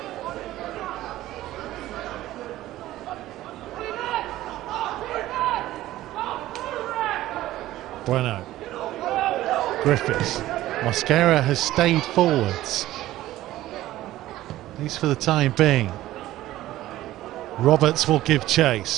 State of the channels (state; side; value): quieter; left; 15.2 dB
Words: Bueno. Griffiths. Mosquera has stayed forwards, at least for the time being. Roberts will give